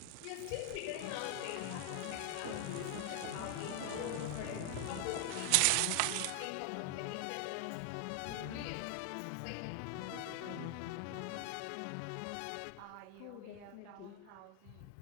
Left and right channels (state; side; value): different; both; correlation 0.00